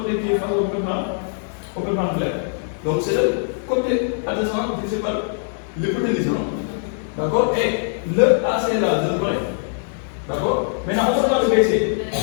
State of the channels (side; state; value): right; silent; 60 dB below the other